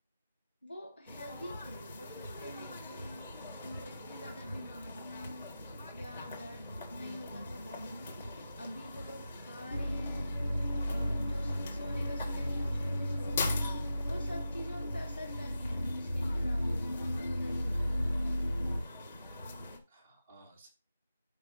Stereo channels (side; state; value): both; inverted; correlation -0.92